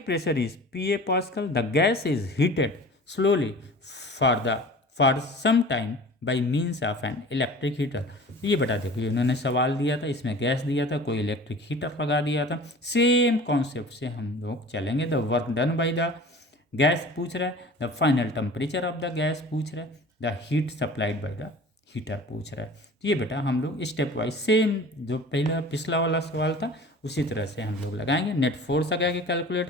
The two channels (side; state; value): both; normal; correlation 0.42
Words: pressure is PA Pascal. The gas is heated slowly for some time by means of an electric heater. ये बेटा देखो इन्होंने सवाल दिया था, इसमें gas दिया था, कोई इलेक्ट्रिक हीटर लगा दिया था। सेम कॉन्सेप्ट से हम लोग चलेंगे। The work done by the gas पूछ रहा है, the final temperature of the gas पूछ रहा है, the heat supplied by the heater पूछ रहा है। तो ये बेटा हम लोग स्टेप वाइज सेम जो पहला पिछला वाला सवाल था उसी तरह से हम लोग लगाएंगे। नेट फोर्स आगे आगे कैलकुलेट